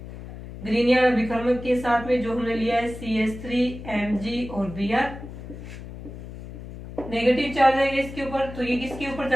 ग्रीनियर अभिकर्मक के साथ में, जो हमने लिया है CH3 और Br। नेगेटिव चार्ज है इसके ऊपर, तो ये किसके ऊपर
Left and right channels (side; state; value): left; noise; hum, 12 dB below the sound